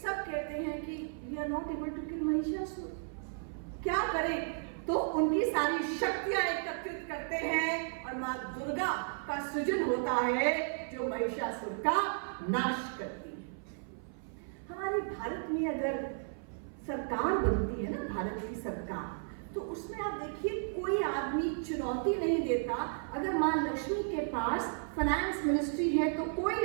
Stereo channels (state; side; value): silent; left; 55 dB below the other